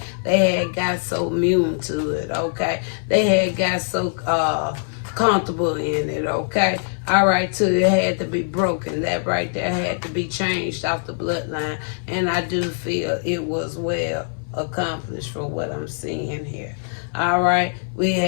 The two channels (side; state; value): right; silent; 57 dB below the other